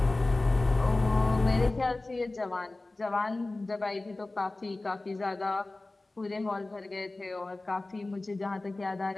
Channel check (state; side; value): quieter; right; 3.0 dB